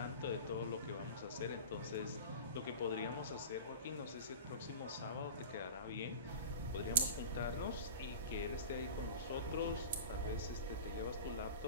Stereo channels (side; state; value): both; inverted; correlation -0.35